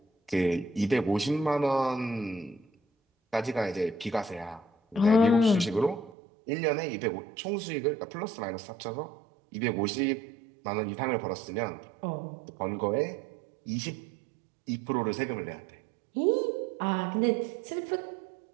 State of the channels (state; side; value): drops out; left; at 6.2 s